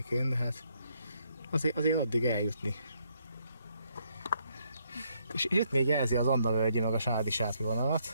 de hát azért addig eljutni. És itt még jelzi az Andavölgyi meg a Sádi-Sátri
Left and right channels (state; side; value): inverted; both; correlation -0.73